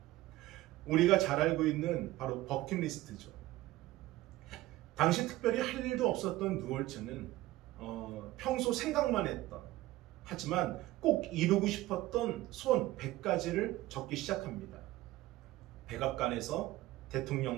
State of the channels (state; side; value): quieter; left; 17.0 dB